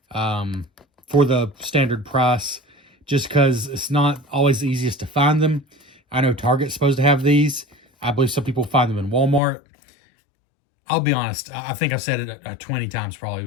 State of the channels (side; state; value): right; drops out; at 9.4 s